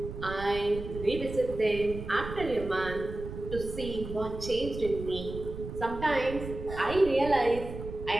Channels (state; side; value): noise; right; rumble, 9 dB below the sound